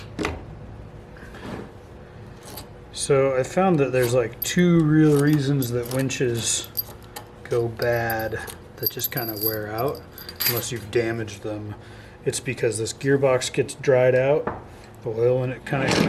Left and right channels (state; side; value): identical; both; correlation 1.00